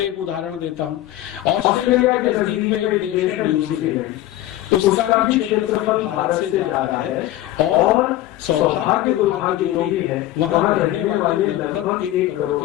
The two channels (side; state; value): right; quieter; 14.6 dB